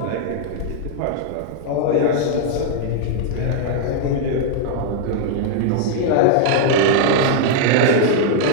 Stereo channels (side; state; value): both; different; correlation -0.01